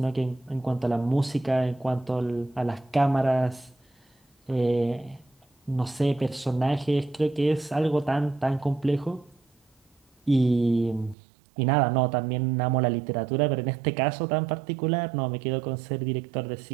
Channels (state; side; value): drops out; left; at 11.2 s